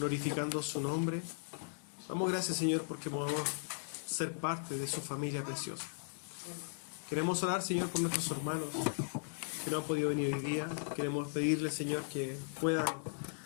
su nombre. Damos gracias, Señor, porque podemos ser parte de su familia preciosa. Queremos orar, Señor, por nuestros hermanos que no han podido venir hoy día. Queremos pedirle, Señor, que puedan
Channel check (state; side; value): silent; right; digital silence